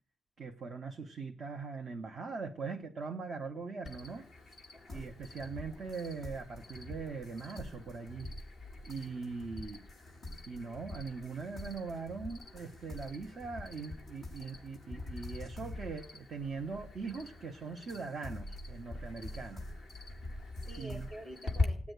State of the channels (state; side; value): normal; both; correlation 0.76